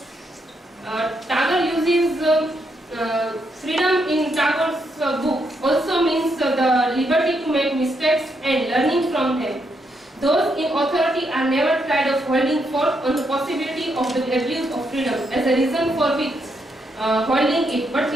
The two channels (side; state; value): both; normal; correlation 0.78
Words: Tagore uses freedom in Tagore's book also means the liberty to make mistakes and learning from them. Those in authority are never tired of holding forth on the possibility of the abuse of freedom as a reason for which holding it. But